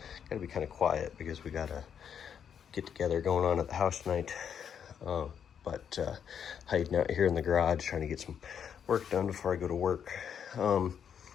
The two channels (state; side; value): quieter; right; 8.0 dB